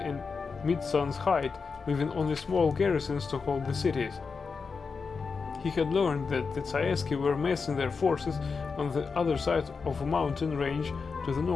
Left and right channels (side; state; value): right; quieter; 5.0 dB